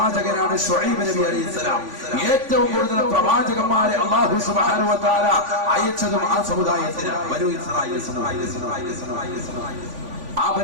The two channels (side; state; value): left; late; 3.5 ms